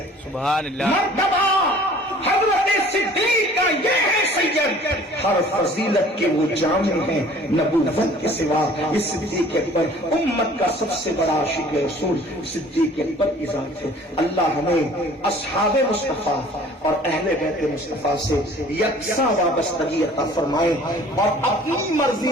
سبحان اللہ، مرتبہ حضرت صدیق کا یہ ہے سید، ہر فضیلت کے وہ جامع ہیں نبوت کے سوا۔ یہ صدیق اکبر امت کا سب سے بڑا عاشق رسول صدیق اکبر کی ذات ہے۔ اللہ ہمیں اصحاب مصطفیٰ اور اہل بیت مصطفیٰ سے یکساں وابستگی عطا فرمائے اور اپنی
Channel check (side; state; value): both; normal; correlation 0.51